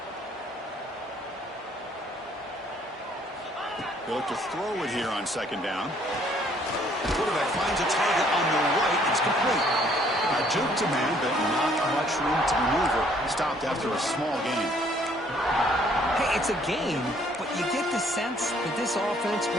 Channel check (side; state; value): both; normal; correlation 0.62